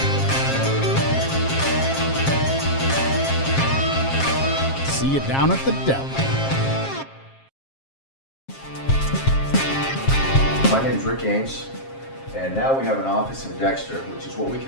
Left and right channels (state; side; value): late; right; 7.5 ms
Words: See you down at the deli. My name's Rick Ames, and now we have an office in Dexter, which is what we